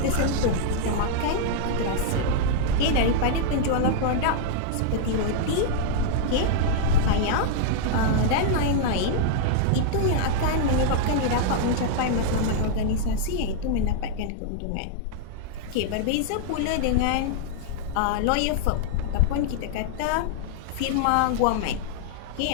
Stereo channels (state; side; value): different; both; correlation -0.01